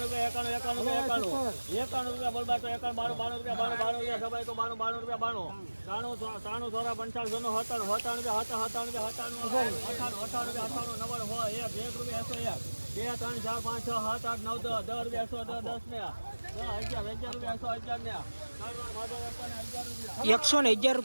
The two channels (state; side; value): inverted; both; correlation -1.00